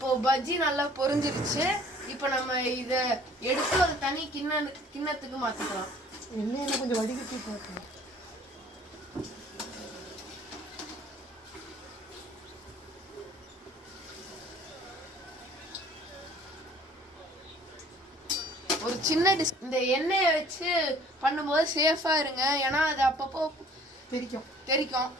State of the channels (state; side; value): normal; both; correlation 0.54